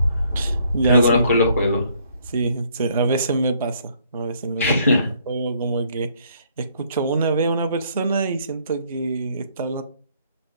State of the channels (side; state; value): both; inverted; correlation -0.66